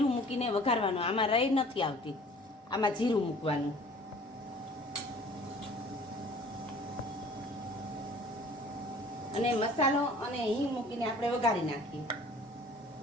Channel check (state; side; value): normal; both; correlation 0.50